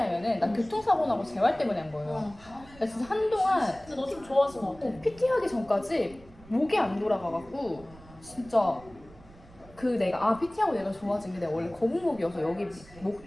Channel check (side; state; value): right; noise; rumble, 22 dB below the sound